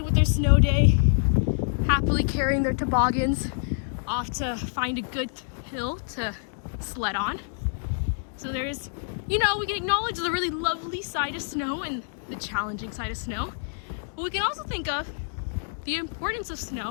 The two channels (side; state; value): right; silent; digital silence